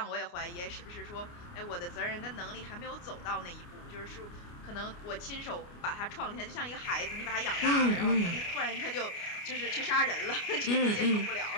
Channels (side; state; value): right; late; 29 ms